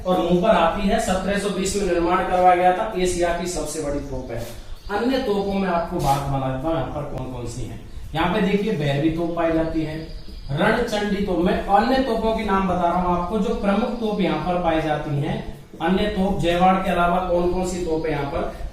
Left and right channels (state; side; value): identical; both; correlation 1.00